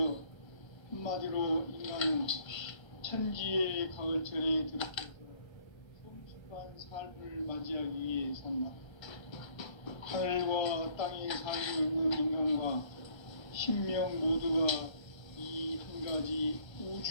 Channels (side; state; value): right; late; 1.3 ms